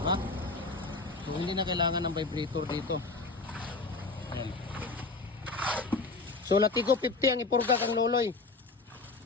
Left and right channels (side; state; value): right; quieter; 3.7 dB